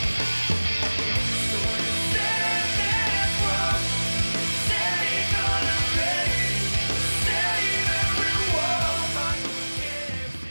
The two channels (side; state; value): both; inverted; correlation -1.00